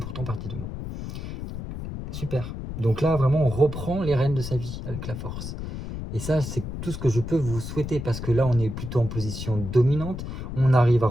partie de moi. Super. Donc là, vraiment, on reprend les rênes de sa vie avec la force. Et ça, c'est tout ce que je peux vous souhaiter, parce que là, on est plutôt en position dominante, on arrive à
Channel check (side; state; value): left; noise; rumble, 7 dB below the sound